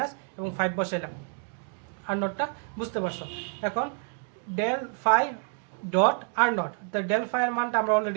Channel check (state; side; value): quieter; left; 39.0 dB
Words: এবং 5 বসাইলাম, আর নটটা বুঝতে পারছো। এখন del phi dot r naught, তো ডেল ফাই এর মানটা আমরা